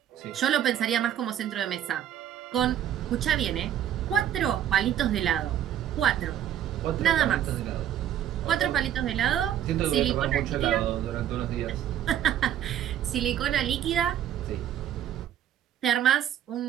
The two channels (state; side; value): quieter; left; 10.7 dB